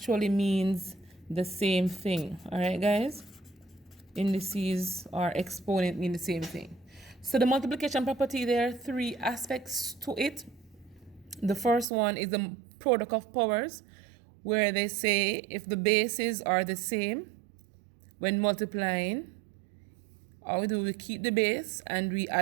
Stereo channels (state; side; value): drops out; left; at 11.9 s